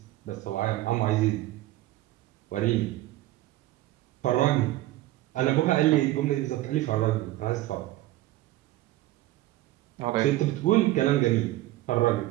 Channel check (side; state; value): left; quieter; 16.3 dB